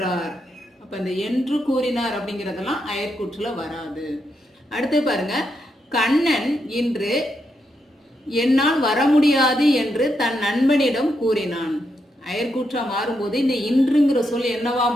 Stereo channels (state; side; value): normal; both; correlation 0.82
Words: அப்ப இந்த என்று கூறினார் அப்படிங்கிறதெல்லாம் அயற்கூற்றுல வராது. அடுத்து பாருங்க, கண்ணன் இன்று என்னால் வர முடியாது என்று தன் நண்பனிடம் கூறினான். அயற்கூற்றா மாறும்போது இந்த இன்றுங்கிற சொல் என்னவா